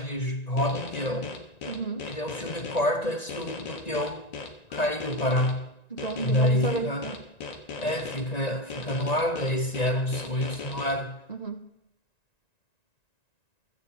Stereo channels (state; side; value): late; right; 1.9 ms